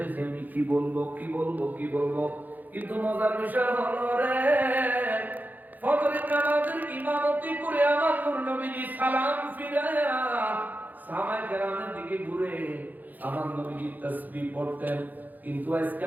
আমি কি বলবো কিন্তু মজার বিষয় হলো রে, ফজরের নামাজের ইমামতি করে আমার নূর নবীজি সালাম ফিরায়া সাহাবায়ে কেরামের দিকে ঘুরে আমার নবীজি তাসবিহ পড়তেন, কিন্তু আজকে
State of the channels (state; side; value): late; left; 0.083 ms